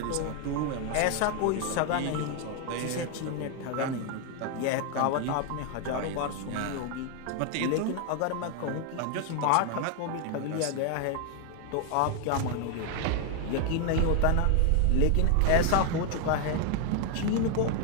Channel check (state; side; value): different; both; correlation 0.01